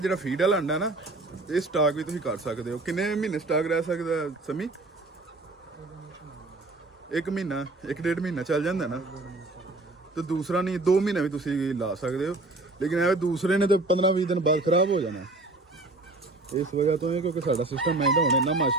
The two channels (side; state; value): left; quieter; 3.0 dB